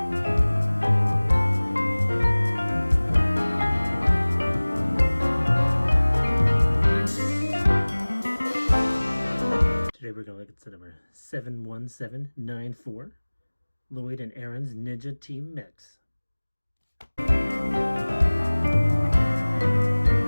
Today we're going to look at set number 71794, Lloyd and Arin's Ninja Team Mechs.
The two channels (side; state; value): both; inverted; correlation -1.00